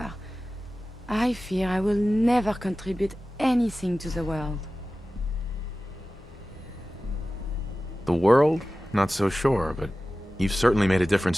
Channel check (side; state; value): both; normal; correlation 0.96